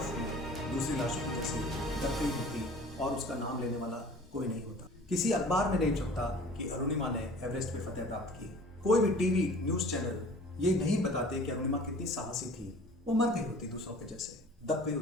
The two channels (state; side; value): normal; both; correlation 0.46